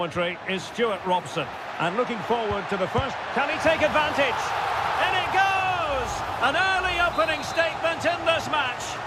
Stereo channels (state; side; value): identical; both; correlation 1.00